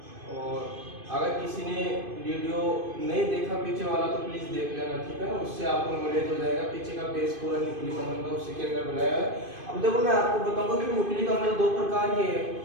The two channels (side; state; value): left; late; 2.5 ms